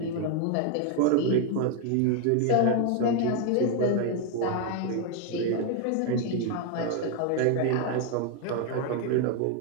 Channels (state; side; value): different; both; correlation 0.00